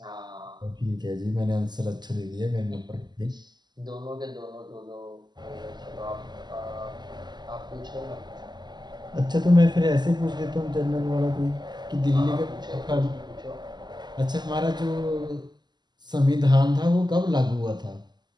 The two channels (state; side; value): late; left; 0.21 ms